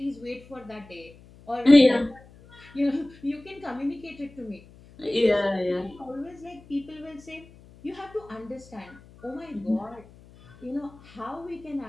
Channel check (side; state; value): left; noise; hum, 23 dB below the sound